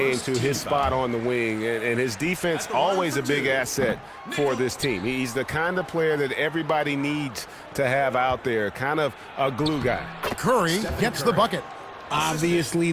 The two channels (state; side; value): identical; both; correlation 1.00